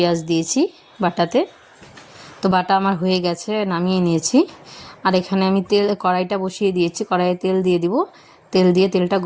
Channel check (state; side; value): identical; both; correlation 1.00